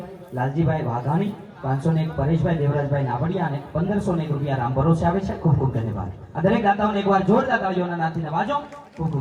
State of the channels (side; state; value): both; identical; correlation 1.00